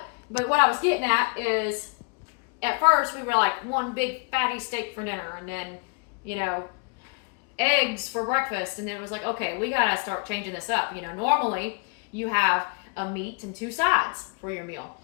But what I was getting at is, at first we were like one big fatty steak for dinner, and then eggs for breakfast, and then it was like, okay, we gotta start changing this up. Normally you have a meat and 2 sides for your meal.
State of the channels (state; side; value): quieter; right; 35.5 dB